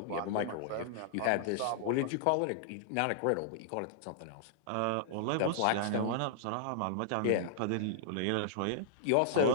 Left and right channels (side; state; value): both; different; correlation -0.01